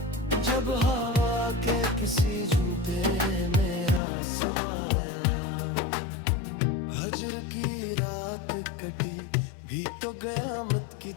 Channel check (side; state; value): right; drops out; at 4.0 s